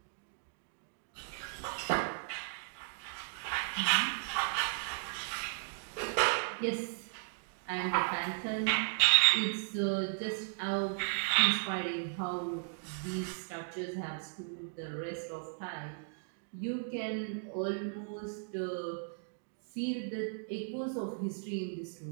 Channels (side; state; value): left; silent; digital silence